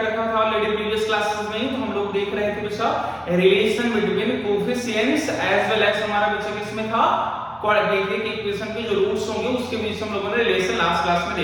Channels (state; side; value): identical; both; correlation 1.00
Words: था ऑलरेडी प्रीवियस क्लासेस में, तो हम लोग देख रहे थे बच्चा relation between coefficients as well as हमारा बच्चा किसमें था क्वाड्रेटिक इक्वेशन के जो रूट्स होंगे उसके बीच हम लोगों ने रिलेशन लास्ट क्लास में